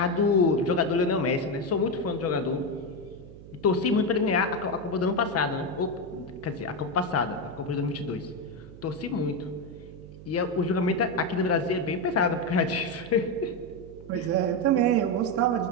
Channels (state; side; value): noise; right; hum, 17 dB below the sound